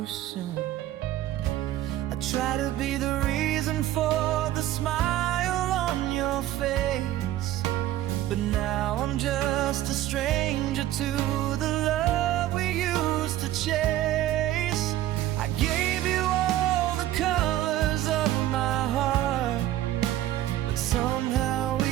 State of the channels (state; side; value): quieter; left; 13.8 dB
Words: soon. I try to be the reason for the smile on your face, but now I'm just a stranger to the love we used to chase. I gave you all the colors of my heart, but somehow